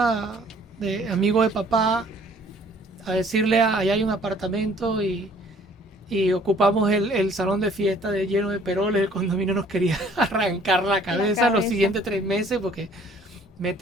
de amigo de papá a decirle, allá hay un apartamento y ocupamos el salón de fiesta lleno de peroles. El condominio nos quería arrancar la La cabeza los cabeza. siguientes 3 meses porque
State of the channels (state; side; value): normal; both; correlation 0.56